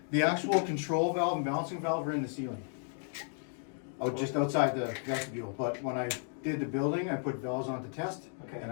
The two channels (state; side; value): silent; right; 55 dB below the other